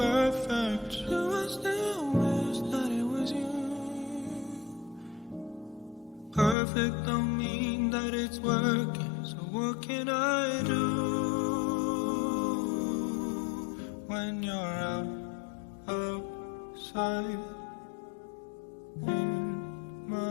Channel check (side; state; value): right; drops out; at 6.6 s